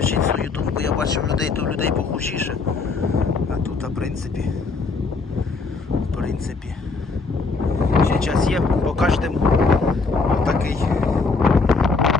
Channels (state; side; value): quieter; right; 4.2 dB